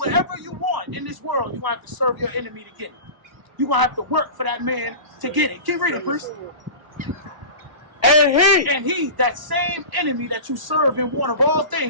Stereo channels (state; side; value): late; left; 1.0 ms